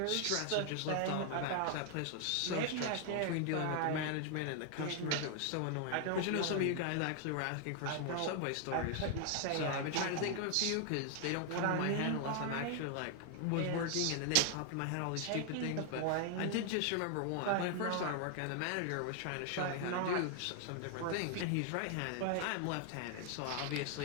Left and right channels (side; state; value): both; different; correlation 0.00